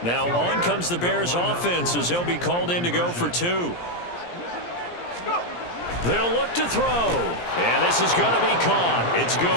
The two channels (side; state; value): right; late; 17 ms